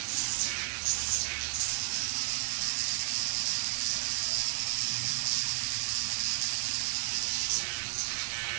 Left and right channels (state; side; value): silent; left; 56 dB below the other